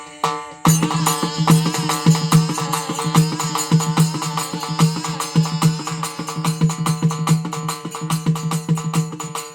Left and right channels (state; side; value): identical; both; correlation 1.00